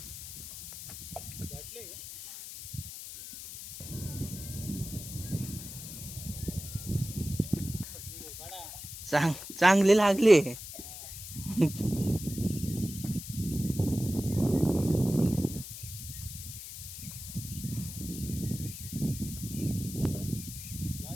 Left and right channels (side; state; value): left; noise; hiss, 10 dB below the sound